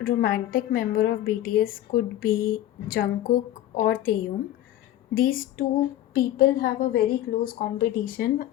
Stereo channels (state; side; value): quieter; right; 13.3 dB